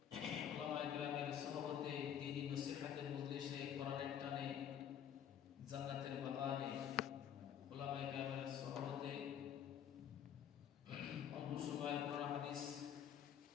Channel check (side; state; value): right; quieter; 9.3 dB